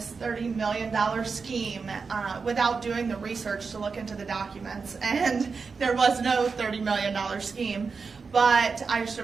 $30 million scheme without doing the research to look into the documents. And there was no $30 million scheme. But I just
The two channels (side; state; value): left; quieter; 4.9 dB